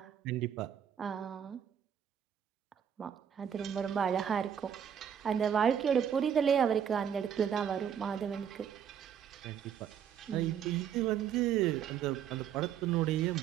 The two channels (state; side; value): quieter; left; 8.6 dB